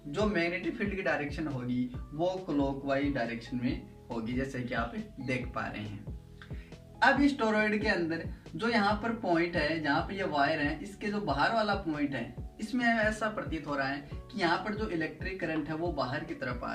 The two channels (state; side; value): identical; both; correlation 1.00